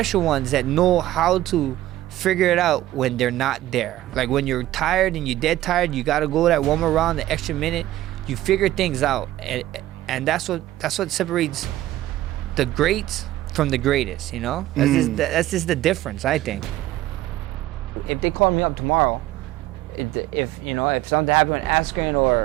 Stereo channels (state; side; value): quieter; left; 14.9 dB